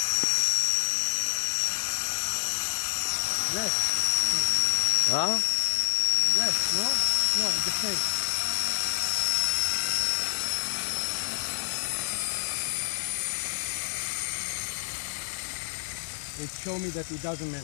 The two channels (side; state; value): right; silent; digital silence